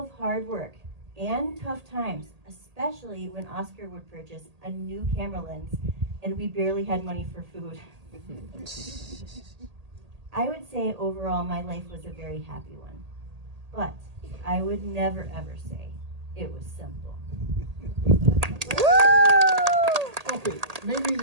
hard work and tough times, especially when Oscar would purchase a new camera lens and we barely had money for food. I would say overall my life was a very happy one, but I would never ever say it was simple. Okay, maybe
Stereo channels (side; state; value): left; late; 1.8 ms